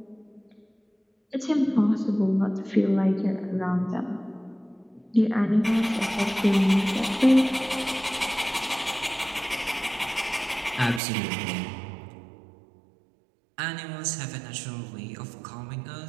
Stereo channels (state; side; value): drops out; left; at 11.0 s